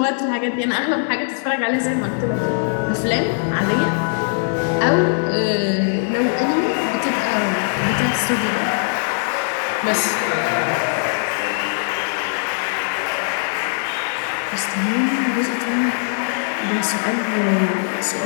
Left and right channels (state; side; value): silent; right; digital silence